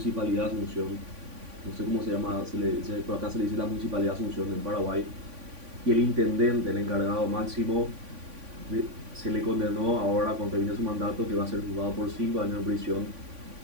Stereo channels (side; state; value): left; late; 3.5 ms